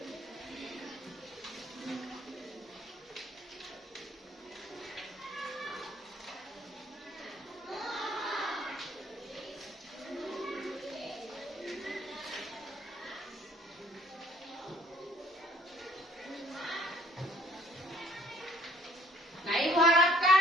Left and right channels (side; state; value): both; normal; correlation 0.58